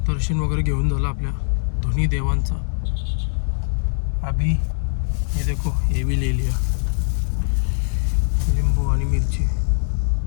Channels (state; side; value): silent; right; digital silence